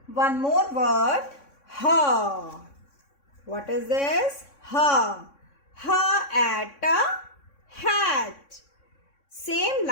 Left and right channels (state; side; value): late; right; 3.6 ms